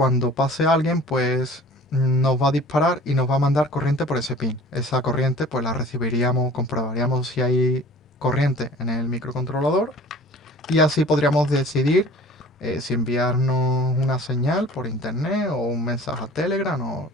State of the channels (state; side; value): normal; both; correlation 0.45